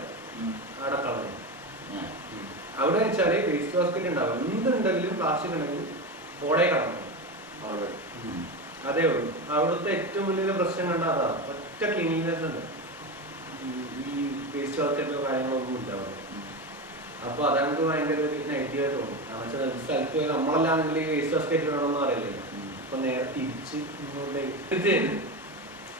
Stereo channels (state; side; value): normal; both; correlation 0.19